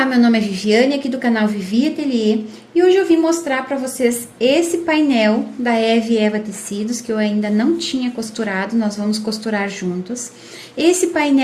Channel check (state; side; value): identical; both; correlation 1.00